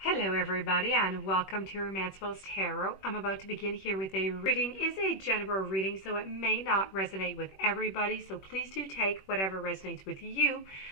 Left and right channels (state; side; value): late; right; 21 ms